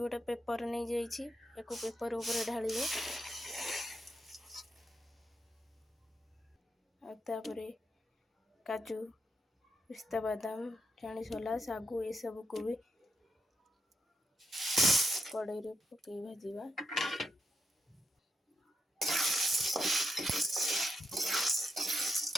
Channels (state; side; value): normal; both; correlation 0.82